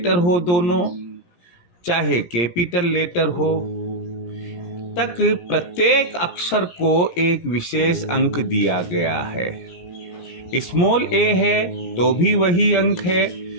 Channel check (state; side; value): late; right; 17 ms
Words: हो दोनों, चाहे कैपिटल लेटर हो, तक प्रत्येक अक्षर को एक विशेष अंक दिया गया है। स्मॉल ए है तो भी वही अंक है,